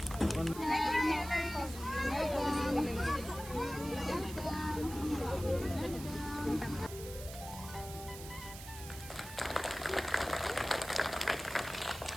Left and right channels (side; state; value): right; noise; hiss, 13 dB below the sound